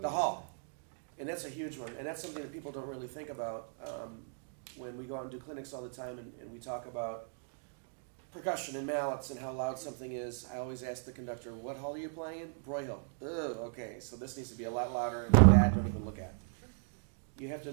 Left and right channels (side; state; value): left; silent; digital silence